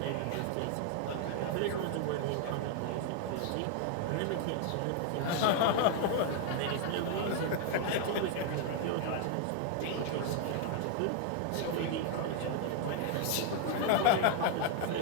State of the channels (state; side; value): different; both; correlation 0.00